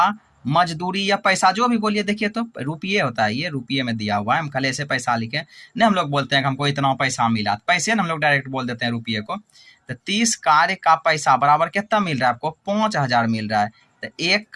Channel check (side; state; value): both; identical; correlation 1.00